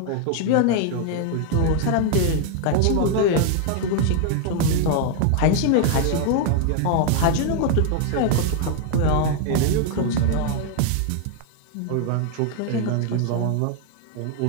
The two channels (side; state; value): both; different; correlation 0.00